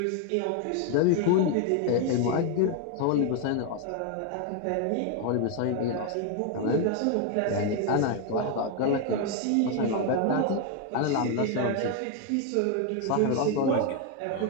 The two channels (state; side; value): different; both; correlation 0.01